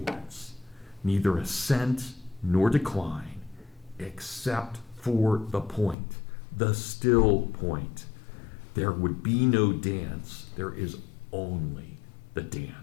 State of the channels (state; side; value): drops out; right; at 6.0 s